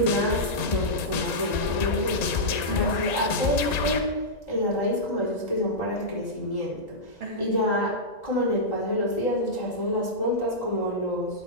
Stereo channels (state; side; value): late; right; 1.9 ms